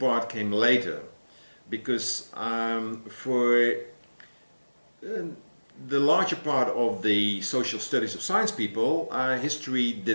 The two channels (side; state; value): both; inverted; correlation -1.00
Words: came later, because for the larger part of the social studies of science people, history